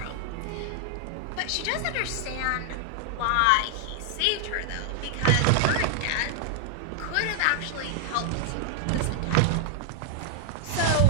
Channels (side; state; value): both; different; correlation 0.00